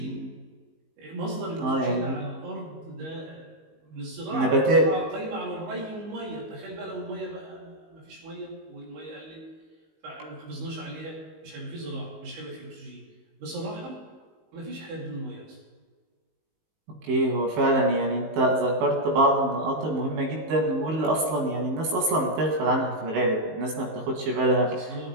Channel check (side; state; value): left; late; 19 ms